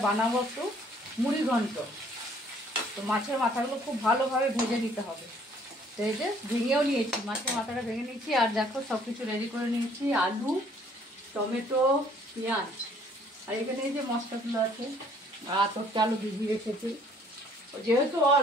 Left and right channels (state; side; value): normal; both; correlation 0.60